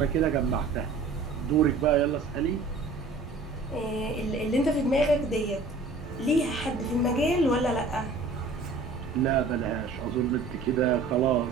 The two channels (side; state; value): left; quieter; 3.8 dB